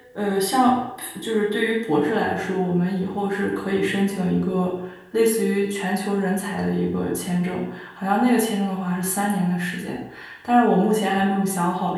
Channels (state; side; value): identical; both; correlation 1.00